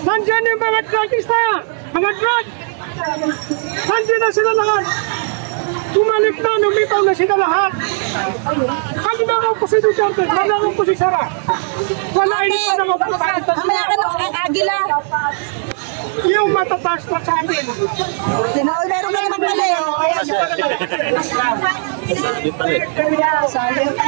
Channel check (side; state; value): left; silent; 56 dB below the other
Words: Nandiyan yung mga drugista. Mga drug. Nandiyan na sila lahat. Tumalik na, lumitaw na sila lahat. Pagdaraw ko si Duterte, pagdaraw ko si Sara. Wala ini pa naman po tayo. Mamaya ka ng agila. Yung matataas pa sa amin. Tinaol meron ka naman pala eh.